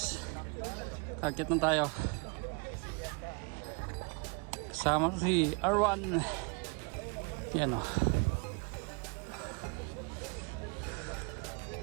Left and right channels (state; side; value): quieter; left; 32.4 dB